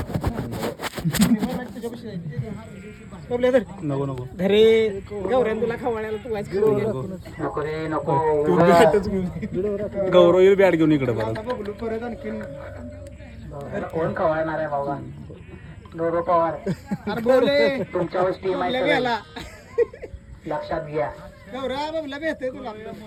नको घरी गौऱ्यान तुला खवळ्याला तू वाच नको रे नको. गौरव बॅट घेऊन इकडे परत आणखीन कोण खवळणार आहे बाबा. गौरव पवार तुमच्यावर टीम आहे लक्षात घ्या. गौऱ्या बाबला भेटते तुला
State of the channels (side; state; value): both; identical; correlation 1.00